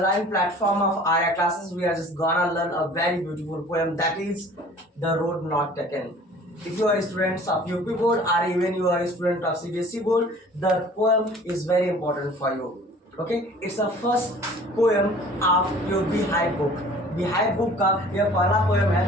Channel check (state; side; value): normal; both; correlation 0.48